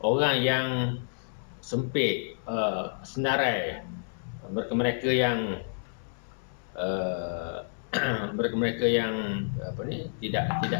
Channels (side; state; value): right; silent; 58 dB below the other